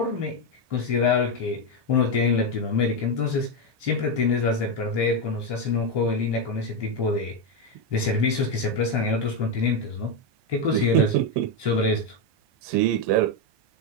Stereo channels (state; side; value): late; left; 1.2 ms